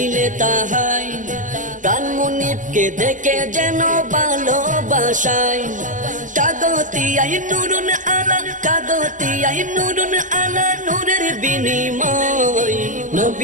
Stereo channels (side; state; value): left; late; 0.37 ms